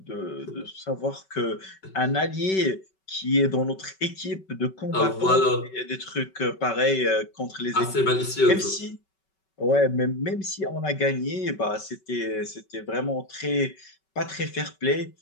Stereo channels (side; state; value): right; late; 5.3 ms